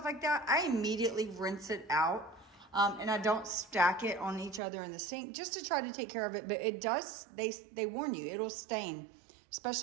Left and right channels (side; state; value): left; drops out; at 4.6 s